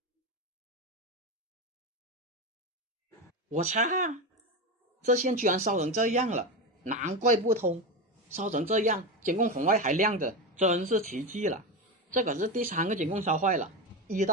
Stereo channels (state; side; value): normal; both; correlation 0.17